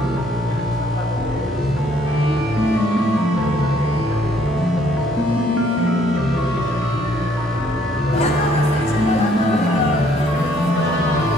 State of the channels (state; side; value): normal; both; correlation 0.65